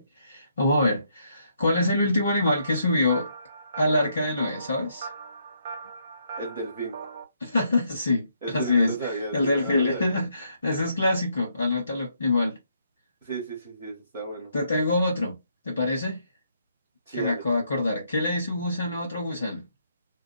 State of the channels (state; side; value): inverted; both; correlation -0.74